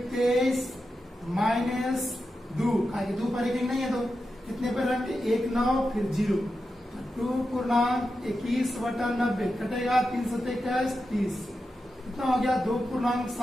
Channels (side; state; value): both; normal; correlation 0.90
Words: 23 माइनस 2, 2 पर रेकरिंग नहीं है तो कितने पर रख, 1, 9 फिर 0, 2 पूर्णांक 21/90 कटेगा, 3 7 21 30 कितना हो गया, 2 पूर्णांक